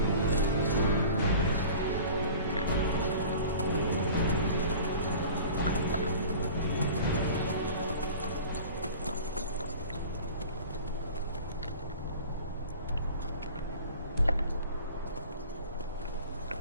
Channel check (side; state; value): both; inverted; correlation -0.41